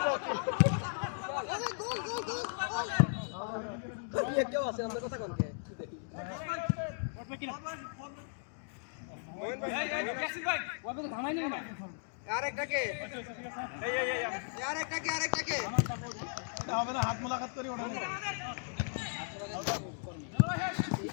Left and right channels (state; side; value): silent; right; digital silence